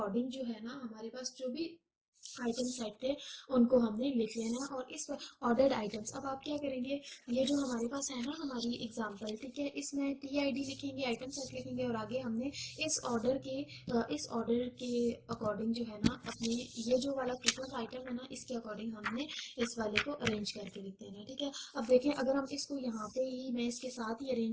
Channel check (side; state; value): both; identical; correlation 1.00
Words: जो है ना हमारे पास जो भी आइटम सेट थे उनको हमने लिख लेना है, और इस ऑर्डर्ड आइटम्स अब आप क्या करेंगे, ये जो हमारे पास है ना हमारी एग्जांपल, ठीक है, इसमें टी आई डी लिखेंगे, आइटम सेट लिखेंगे, और आगे हमने इस ऑर्डर के अकॉर्डिंग जो है ना अपने ये जो वाला फ्रीक्वेंट आइटम है ना इसके अकॉर्डिंग हमने इस वाले को अरेंज करके लिख देना है, ठीक है। अब देखें अगर हम इसको यहाँ पे ही मैं इसके साथ ही